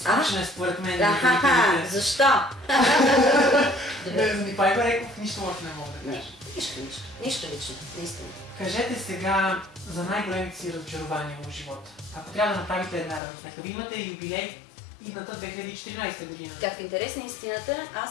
е според мен. Защо? За Николай Бареков нищо лошо не мога да кажа. Нищо лично, наистина. Кажете сега за най-големите си разочарования в живота. Ако трябва да направите една равносметка, вие имате юбилей идната 2014 година. Как в интерес на истината,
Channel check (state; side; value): drops out; right; at 13.2 s